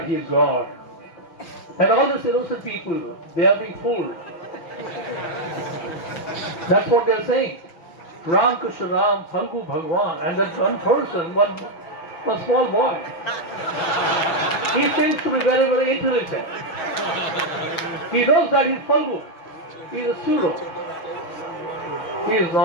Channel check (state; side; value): late; right; 6.3 ms